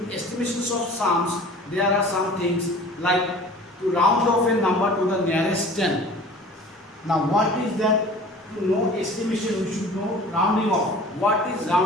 estimations of sums, there are some things like to round off a number to the nearest 10. Now what is that? To know estimation, we should know rounding off. What is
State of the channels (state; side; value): normal; both; correlation 0.44